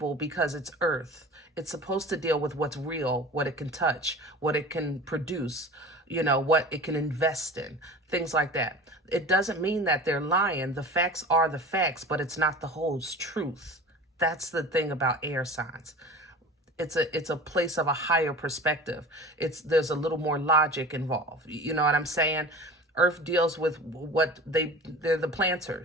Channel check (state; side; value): normal; both; correlation 0.37